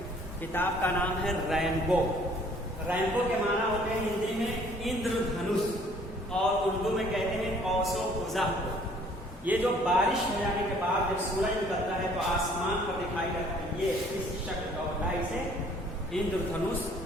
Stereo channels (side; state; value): both; normal; correlation 0.58